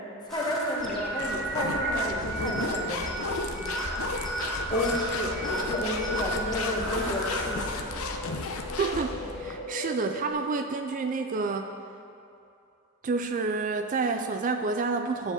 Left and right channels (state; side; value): normal; both; correlation 0.21